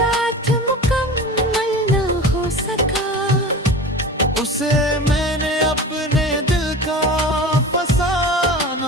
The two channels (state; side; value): normal; both; correlation 0.34